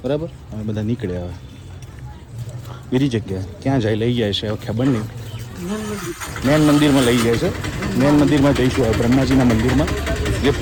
બરાબર. અમે બધા નીકળ્યા. હવે બીજી જગ્યાએ ક્યાં જાય લઈ જાય છે હવે ખબર નહીં. મેન મંદિરમાં લઈ જાય છે. મેન મંદિરમાં જઈશું હવે બ્રહ્માજીના મંદિરમાં જે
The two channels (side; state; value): both; identical; correlation 1.00